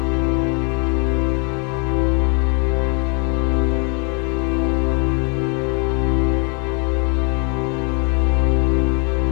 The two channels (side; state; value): right; quieter; 37.4 dB